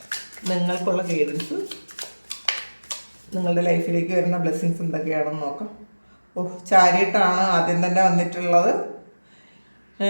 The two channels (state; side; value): inverted; both; correlation -1.00